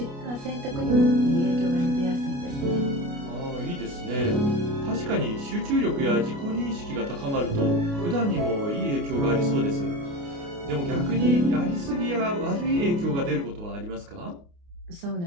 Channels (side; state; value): left; late; 29 ms